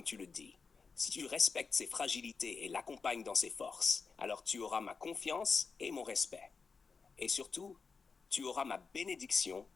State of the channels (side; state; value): right; quieter; 5.0 dB